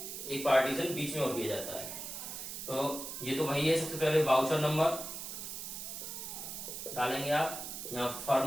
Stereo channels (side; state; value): right; noise; hiss, 7 dB below the sound